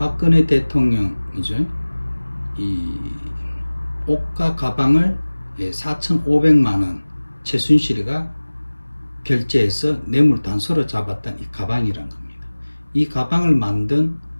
대통령이죠. 이 옷과 가방을 4,500만 원 최순실이가 결제해서 뇌물 단서로 잡았던 이 가방이란 겁니다. 이 가방을 만든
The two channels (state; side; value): inverted; both; correlation -1.00